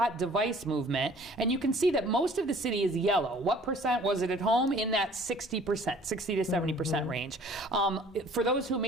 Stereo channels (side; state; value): both; normal; correlation 0.53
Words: device movement. And you can see that most of the city is yellow. What percent was it at home? In that 60% 70%, 60 to 70% range. For those who